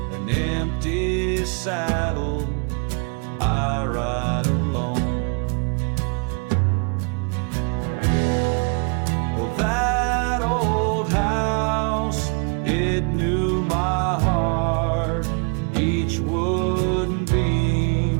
An empty saddle, I ride alone. Well, that old house, it knew my heart. Each wooden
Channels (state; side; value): quieter; left; 34.2 dB